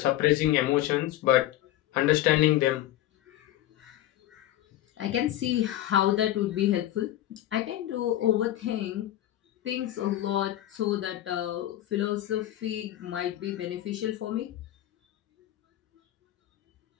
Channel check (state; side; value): quieter; right; 13.6 dB